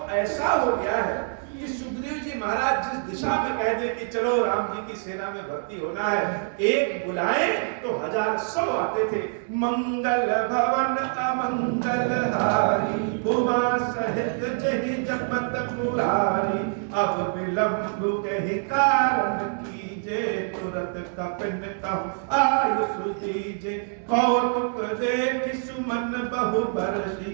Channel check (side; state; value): left; silent; 61 dB below the other